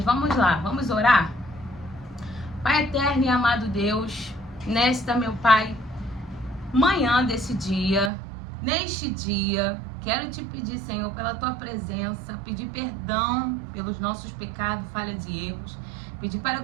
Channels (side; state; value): left; drops out; at 8.1 s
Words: vamos lá, vamos orar? Pai eterno e amado Deus, nesta, meu Pai, manhã desse dia, neste dia, quero te pedir, Senhor, pela tua presença, pedir perdão pelos nossos pecados, falhas e erros, pedir para